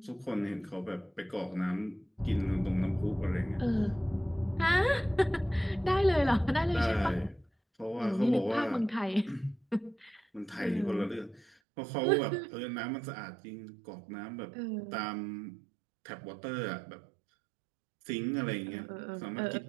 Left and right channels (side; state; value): left; drops out; at 11.5 s